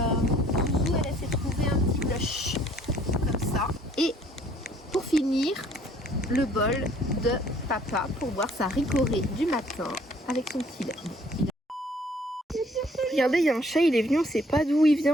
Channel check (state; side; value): normal; both; correlation 0.59